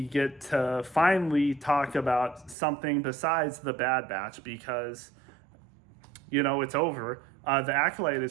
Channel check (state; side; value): drops out; left; at 2.6 s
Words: get to finally talk about something besides the Bad Batch because, it's over. The Acolyte